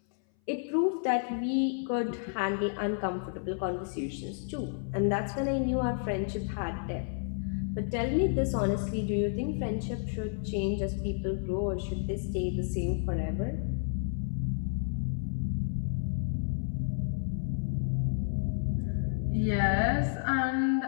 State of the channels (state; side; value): silent; right; 57 dB below the other